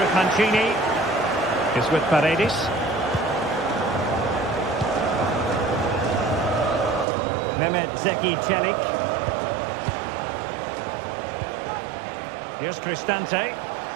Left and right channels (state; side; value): drops out; left; at 7.1 s